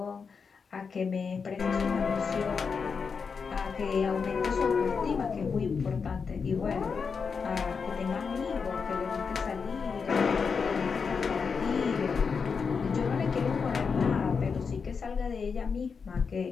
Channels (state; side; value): quieter; right; 5.6 dB